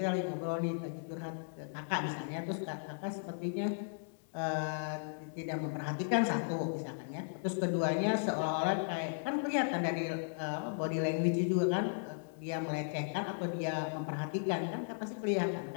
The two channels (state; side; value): silent; right; digital silence